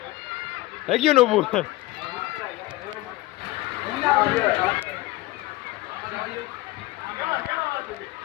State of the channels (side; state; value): right; quieter; 18.9 dB